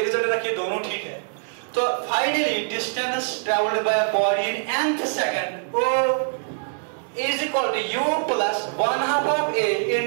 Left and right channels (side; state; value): left; silent; 60 dB below the other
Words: रिजल्ट रखिए, दोनों ठीक है। तो finally distance travelled by a body in nth second is equal to u plus 1/2 of a